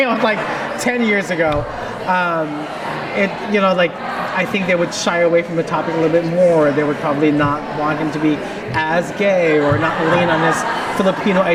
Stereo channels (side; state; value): both; identical; correlation 1.00